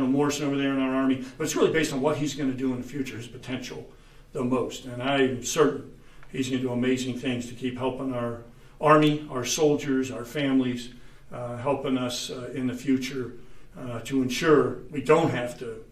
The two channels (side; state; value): both; identical; correlation 1.00